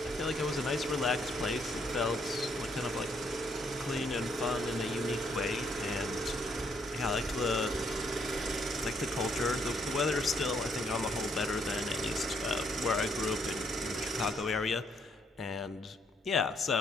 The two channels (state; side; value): normal; both; correlation 0.71